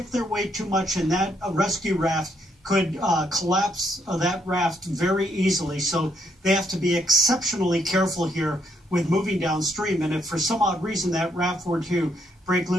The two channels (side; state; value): both; normal; correlation 0.73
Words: their weight too much in that rescue raft could collapse that raft very easily. So they have to be exceptionally careful here with moving downstream. And if for some odd reason that raft were to break